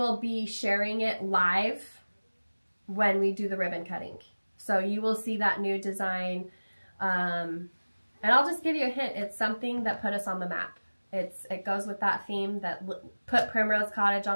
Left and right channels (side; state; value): both; inverted; correlation -1.00